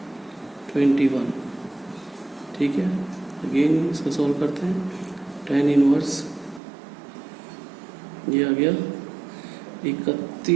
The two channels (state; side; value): drops out; left; at 6.6 s